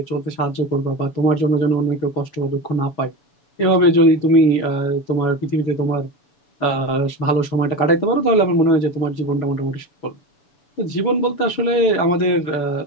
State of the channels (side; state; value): right; late; 7.0 ms